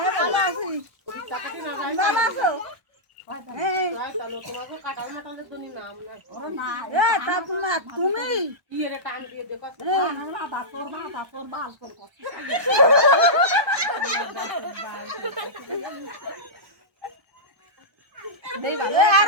ভালো আছি ওই টাকাটি না যায় ভালো আছো তাহলে তোমাকে কাটাল মাটালের জন্য নাম না ওরে না তা তুমি কি এর টান দিয়ে দেখো বাবা তোর বাল তোর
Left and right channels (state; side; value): late; left; 1.1 ms